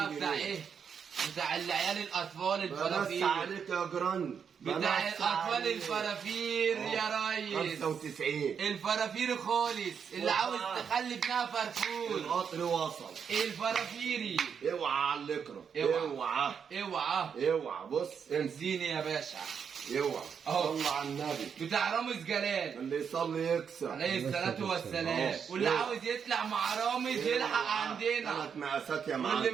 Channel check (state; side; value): quieter; left; 7.0 dB